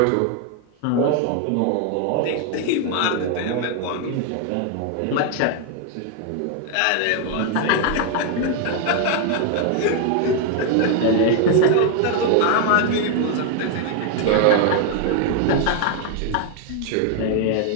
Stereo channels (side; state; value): both; different; correlation 0.00